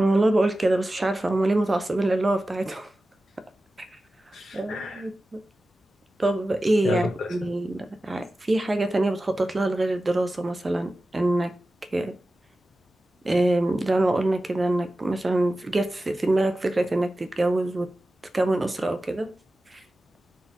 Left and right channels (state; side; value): normal; both; correlation 0.94